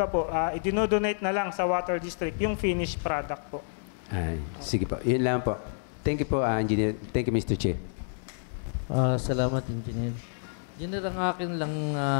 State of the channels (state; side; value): silent; right; digital silence